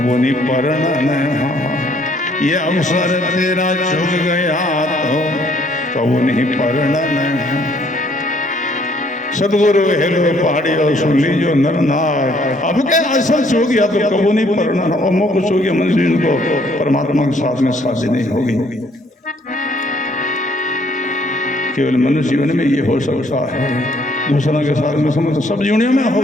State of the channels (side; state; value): both; normal; correlation 0.64